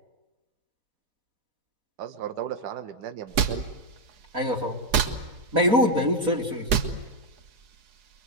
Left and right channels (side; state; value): left; late; 4.9 ms